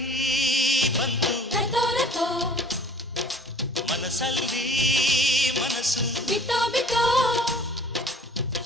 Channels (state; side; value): normal; both; correlation 0.50